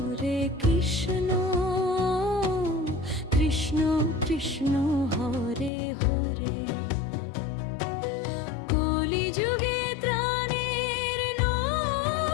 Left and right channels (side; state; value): right; drops out; at 5.7 s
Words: কৃষ্ণ, কৃষ্ণ কৃষ্ণ হরে হরে। কলিযুগে ত্রাণের